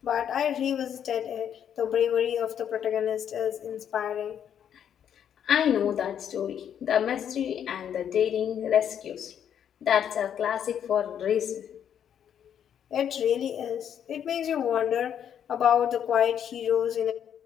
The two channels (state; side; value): quieter; right; 9.0 dB